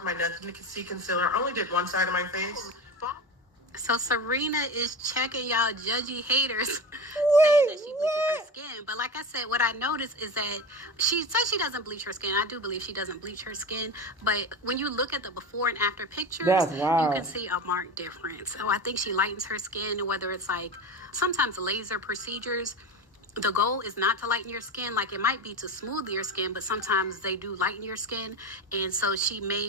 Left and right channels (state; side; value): normal; both; correlation 0.25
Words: my Nothing to See concealer. I only did one side of my face. So Serena is checking y'all judgy haters saying that she bleaches her skin. But like I said, what I noticed is that she says she doesn't bleach her skin. I do believe she doesn't bleach her skin. But when you look at the before and after pictures, That's wild. you can see a marked difference. So I think she lightens her skin, whether it's like sometimes laser procedures. The goal is not to lighten your skin. Like it might be to smooth your skin, but sometimes they do lighten your skin. And so she